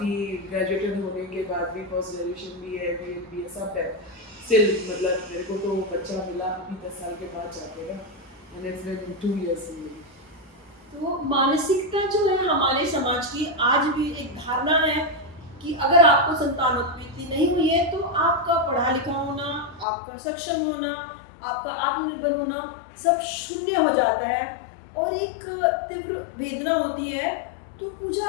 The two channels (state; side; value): drops out; right; at 19.9 s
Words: ग्रेजुएटेड होने के बाद भी, पोस्ट ग्रेजुएशन भी है, बी ए सब है, स्टिल मतलब मेरे को तो बच्चा मिला अभी 10 साल के बाद जाके, एंड इट्स बिन 2 इयर्स। तो मानसिकता जो है हमारे समाज की, आज भी एक धारणा है कि अगर आपको संतानोत्पत्ति नहीं हुई है तो आपका पढ़ा लिखा होना, आपका सक्षम होना, आपका आत्मनिर्भर होना सब शून्य हो जाता है और एक तीव्र वेदना होती है। तो पूजा,